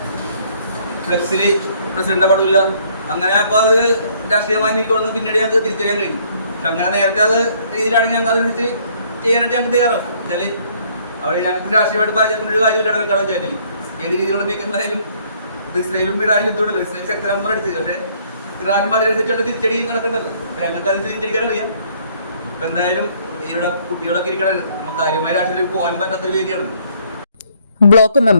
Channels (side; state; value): both; inverted; correlation -0.64